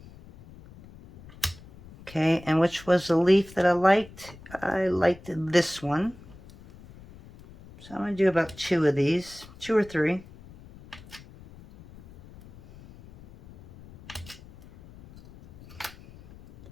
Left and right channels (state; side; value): noise; left; rumble, 20 dB below the sound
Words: Okay, and which was the leaf that I liked? I liked this one. So I'm going to do about 2 of these, 2 or 3.